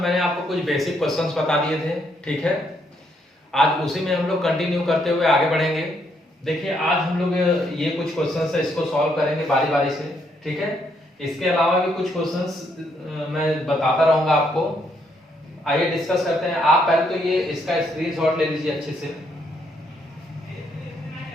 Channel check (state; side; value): normal; both; correlation 0.73